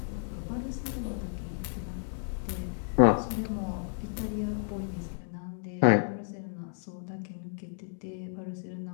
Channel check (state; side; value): silent; right; digital silence